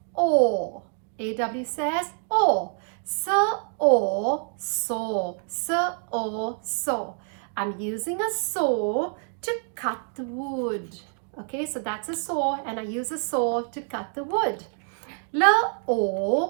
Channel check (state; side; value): silent; left; 55 dB below the other